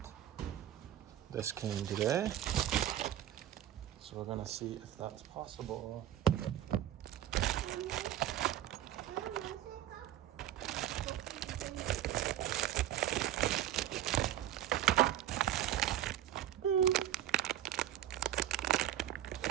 this came today. So we're gonna see if that's possible.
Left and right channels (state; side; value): quieter; left; 12.2 dB